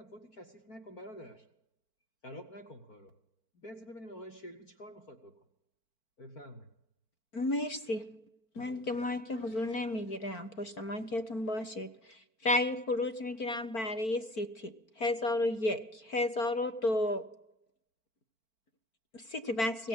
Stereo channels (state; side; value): late; right; 4.5 ms